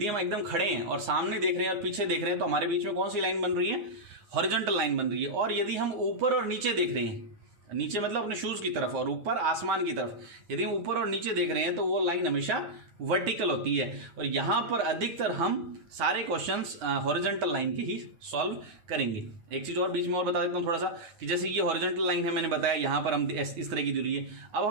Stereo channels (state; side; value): late; left; 9.6 ms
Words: हम एकदम खड़े हैं और सामने देख रहे हैं और पीछे देख रहे हैं तो हमारे बीच में कौन सी लाइन बन रही है, हॉरिजॉन्टल लाइन बन रही है। और यदि हम ऊपर और नीचे देख रहे हैं, नीचे मतलब अपने शूज की तरफ और ऊपर आसमान की तरफ, यदि हम ऊपर और नीचे देख रहे हैं तो वो लाइन हमेशा वर्टिकल होती है। और यहाँ पर अधिकतर हम सारे क्वेश्चंस हॉरिजॉन्टल लाइन के ही सॉल्व करेंगे। एक चीज़ और बीच में और बता देता हूँ थोड़ा सा, कि जैसे ये हॉरिजॉन्टल लाइन है, मैंने बताया यहाँ पर हम इस तरह की दूरी है। अब